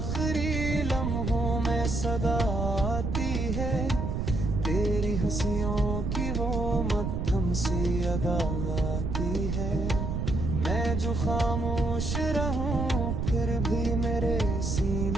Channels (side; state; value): right; noise; rumble, 1 dB below the sound